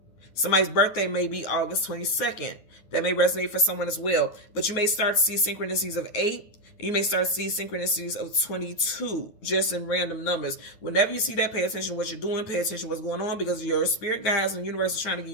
Somebody's birthday may be August 22nd. That may resonate for someone as well. But you may start to see synchronicities of 8. You may start to see synchronicities of 22, just in random numbers. Whenever you see that, pay attention to what you're doing. Pay attention to what's going on because your spirit guides and the universe is trying to give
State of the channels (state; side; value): late; right; 9.5 ms